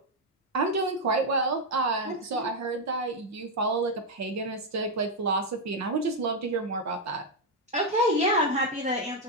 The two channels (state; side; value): normal; both; correlation 0.02